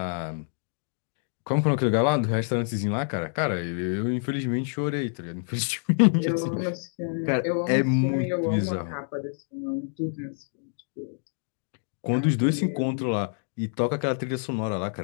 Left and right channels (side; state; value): right; silent; digital silence